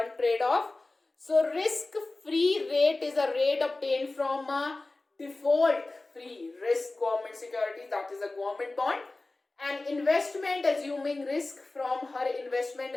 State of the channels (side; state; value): right; quieter; 3.1 dB